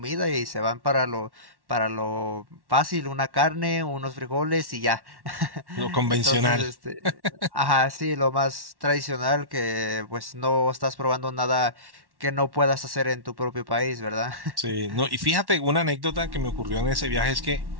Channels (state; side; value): late; left; 1.1 ms